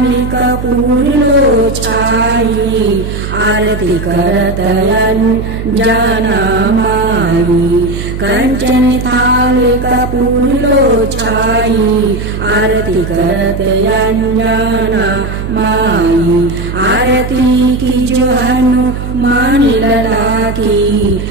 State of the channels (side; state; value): right; noise; hum, 6 dB below the sound